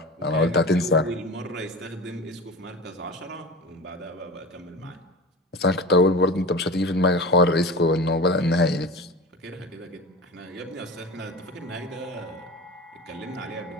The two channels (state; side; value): normal; both; correlation 0.32